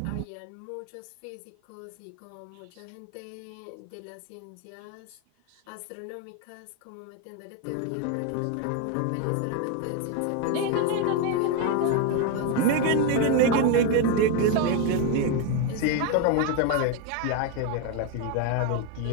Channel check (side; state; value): both; different; correlation 0.02